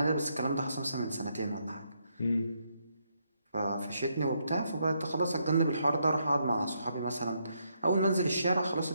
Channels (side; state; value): both; inverted; correlation -0.77